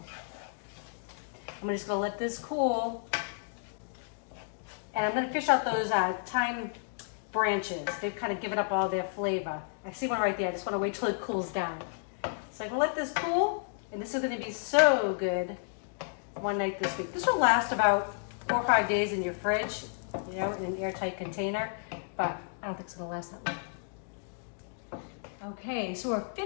I'm just gonna let this cool. And I'm gonna fish out those thyme branches. They've kind of given up all their flavor. I see one right there, I just wanna wait till it cools down. So I'm gonna let this cool, and this is gonna be so good one night this week. This will last about 4 or 5 days in your fridge, you know, in an airtight container, but I don't think it's gonna last that long. Okay, so we're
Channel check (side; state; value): right; silent; digital silence